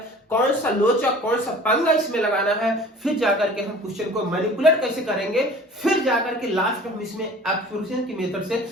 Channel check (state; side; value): normal; both; correlation 0.45